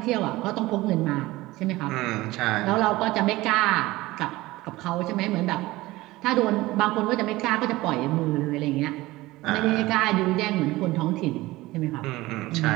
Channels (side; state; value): left; quieter; 18.9 dB